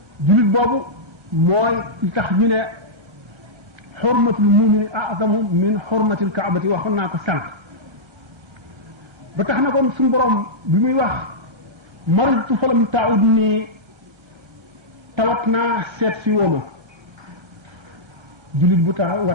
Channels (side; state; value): left; late; 1.6 ms